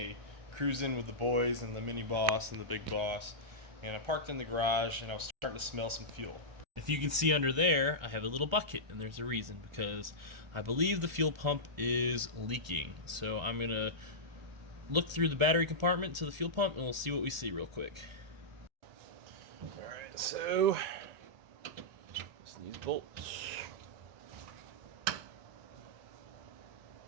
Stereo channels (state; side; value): late; left; 1.4 ms